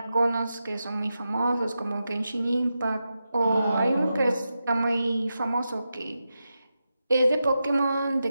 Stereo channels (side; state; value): both; inverted; correlation -0.89